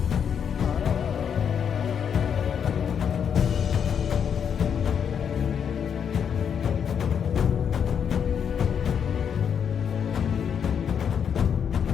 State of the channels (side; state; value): right; quieter; 7.7 dB